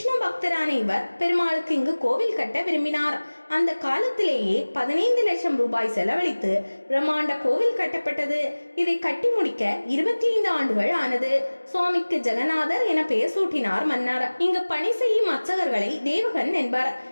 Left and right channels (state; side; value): inverted; both; correlation -1.00